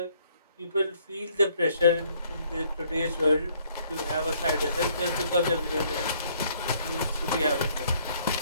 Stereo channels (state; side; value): inverted; both; correlation -0.65